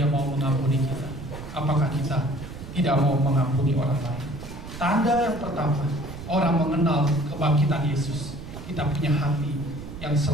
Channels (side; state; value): right; noise; rumble, 11 dB below the sound